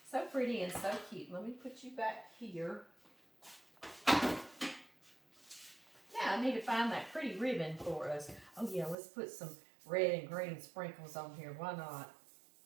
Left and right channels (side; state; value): left; drops out; at 9.0 s